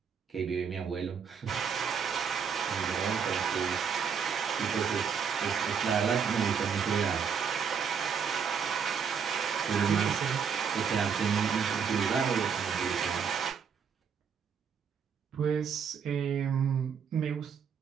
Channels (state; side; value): quieter; left; 6.8 dB